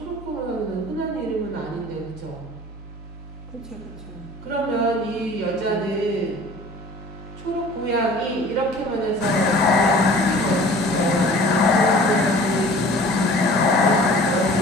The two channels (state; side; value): normal; both; correlation 0.46